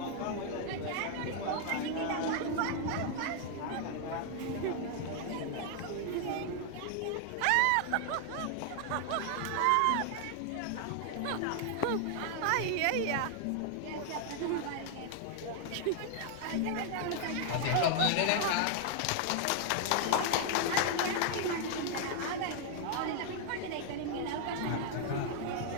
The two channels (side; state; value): both; different; correlation 0.00